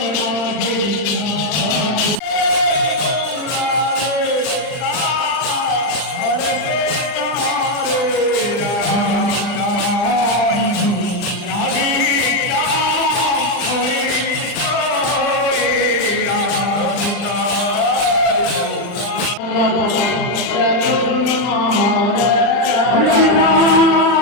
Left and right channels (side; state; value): right; late; 39 ms